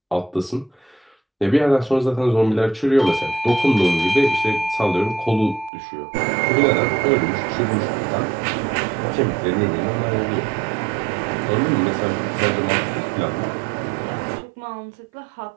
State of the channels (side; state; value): left; drops out; at 5.7 s